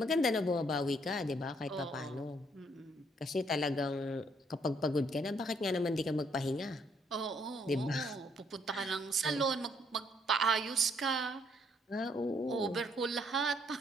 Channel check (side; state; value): both; normal; correlation 0.69